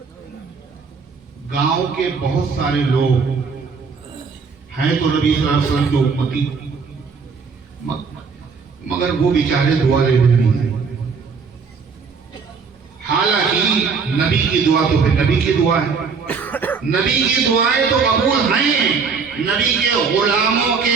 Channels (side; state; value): left; quieter; 5.3 dB